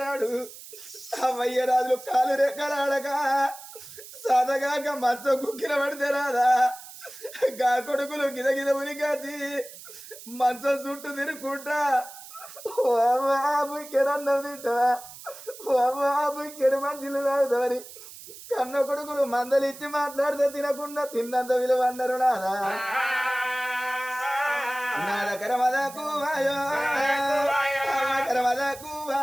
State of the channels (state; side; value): noise; right; hiss, 16 dB below the sound